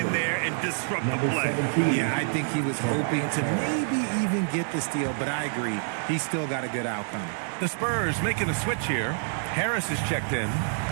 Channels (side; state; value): left; silent; digital silence